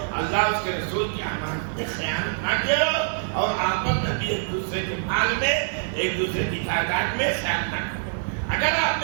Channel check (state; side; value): silent; left; digital silence